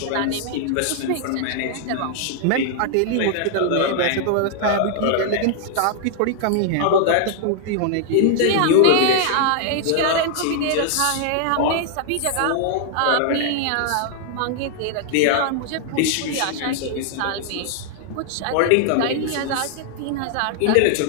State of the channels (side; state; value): both; different; correlation 0.00